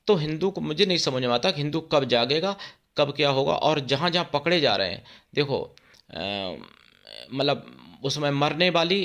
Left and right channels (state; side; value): identical; both; correlation 1.00